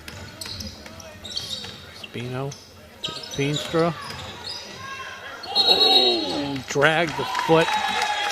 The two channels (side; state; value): both; identical; correlation 1.00